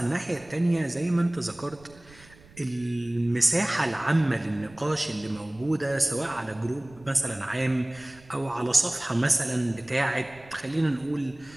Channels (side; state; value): right; noise; rumble, 24 dB below the sound